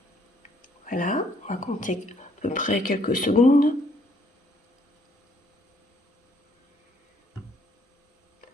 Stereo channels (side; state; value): both; normal; correlation 0.66